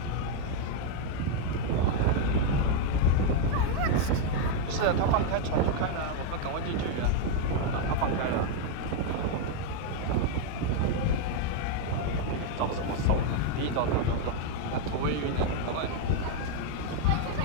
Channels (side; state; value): both; different; correlation 0.00